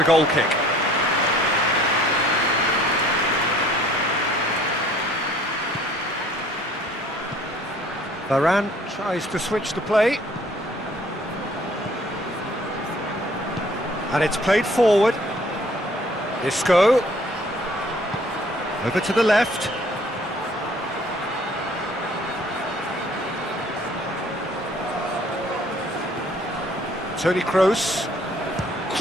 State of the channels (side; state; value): both; normal; correlation 0.56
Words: goal kick. Varane tries to switch the play. And it's played forward. Isco. Over to the left. Toni Kroos.